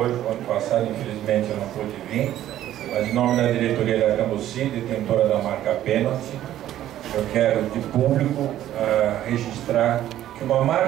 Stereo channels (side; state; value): left; quieter; 12.6 dB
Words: O ano passado, infelizmente, eu não pude vir, mas em nome da diretoria da Cambuci, detentora da marca Pênalti, eu quero de público registrar que uma